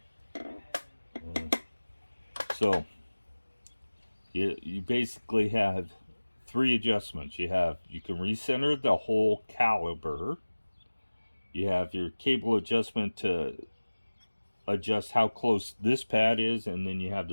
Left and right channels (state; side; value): inverted; both; correlation -1.00